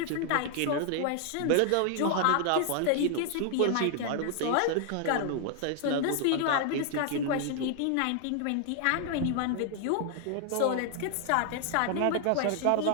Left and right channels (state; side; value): different; both; correlation 0.00